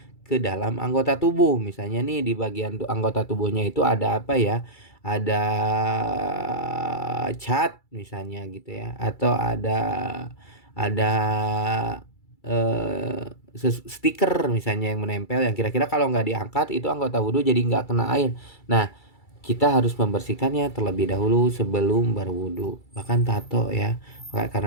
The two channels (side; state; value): right; late; 2.3 ms